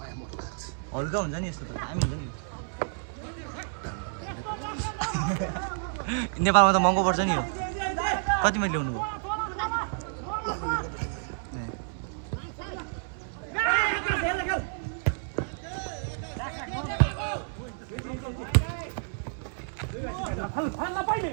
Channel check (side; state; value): left; silent; digital silence